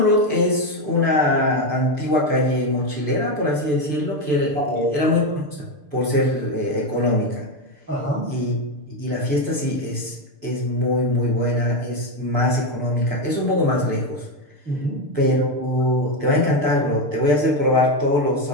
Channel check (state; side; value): late; left; 6.7 ms